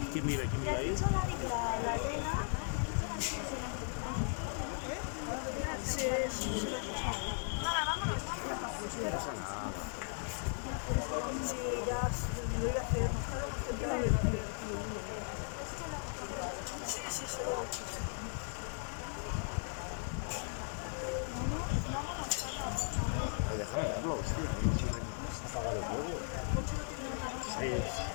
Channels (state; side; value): silent; right; 53 dB below the other